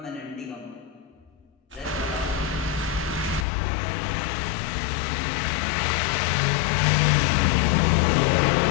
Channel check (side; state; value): right; drops out; at 3.5 s